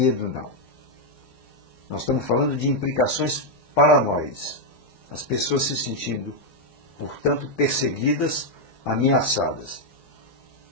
não. Nós estamos falando de implicações paranoides. As pessoas se sentindo, portanto, perseguidas, ameaçadas.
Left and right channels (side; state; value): right; late; 4.8 ms